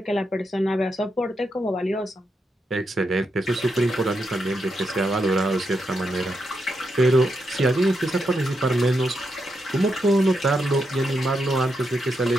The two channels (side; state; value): both; normal; correlation 0.83